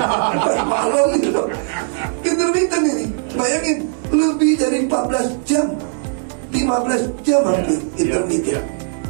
Malam gitu. Intermittent ini, bayangin lebih dari 14 jam, 15 jam hampir intermittent.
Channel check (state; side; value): silent; left; 67 dB below the other